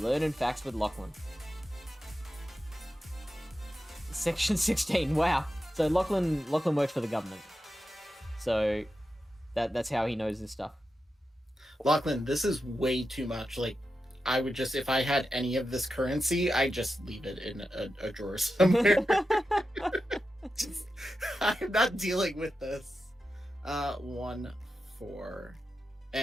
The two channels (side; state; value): both; normal; correlation 0.90